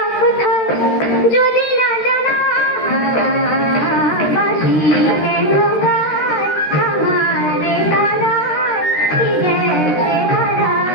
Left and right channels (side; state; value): right; late; 13 ms